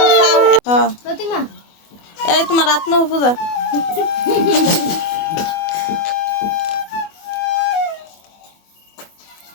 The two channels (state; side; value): late; right; 24 ms